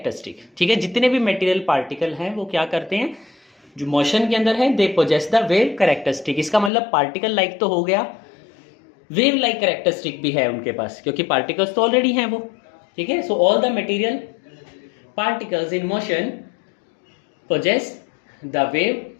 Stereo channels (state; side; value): drops out; right; at 6.7 s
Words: ठीक है, जितने भी मटेरियल पार्टिकल हैं वो क्या करते हैं, जो मोशन के अंदर है they possess the wave characteristic. इसका मतलब पार्टिकल लाइक तो हो गया, वेव लाइक कैरेक्टरिस्टिक भी है उनके पास, क्योंकि पार्टिकल्स तो ऑलरेडी हैं वो। ठीक है, so all the material particles in motion possess the wave